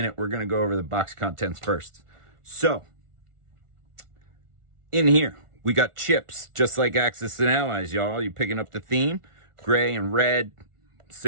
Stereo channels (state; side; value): late; left; 1.4 ms